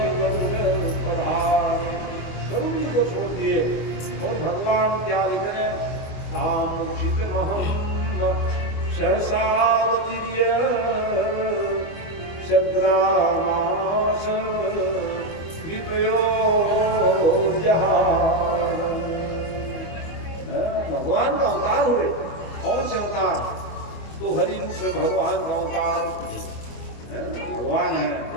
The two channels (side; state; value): right; late; 25 ms